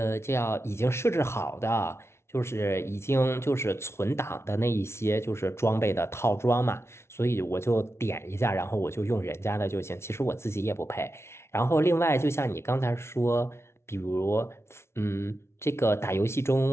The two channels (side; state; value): right; late; 0.13 ms